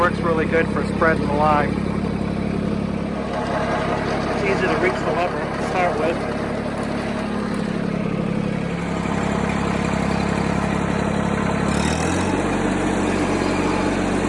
really good for spreading the lime. It's easy to reach the lever to start with.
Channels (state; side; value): identical; both; correlation 1.00